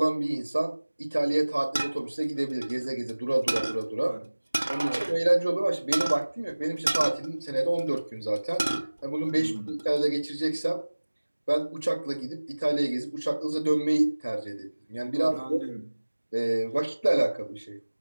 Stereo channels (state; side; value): inverted; both; correlation -1.00